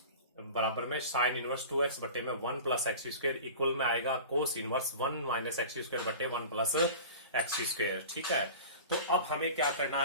में साइन इनवर्स 2x बटे में 1 प्लस एक्स स्क्वायर इक्वल में आएगा cos inverse 1 minus x square बटे 1 प्लस एक्स स्क्वायर। ठीक है, तो अब हमें क्या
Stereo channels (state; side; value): inverted; both; correlation -0.36